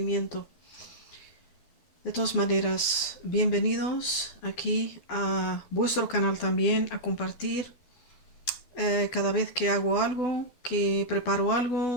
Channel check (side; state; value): right; late; 12 ms